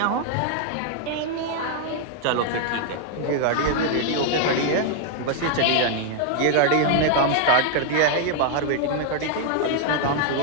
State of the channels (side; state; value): both; different; correlation 0.00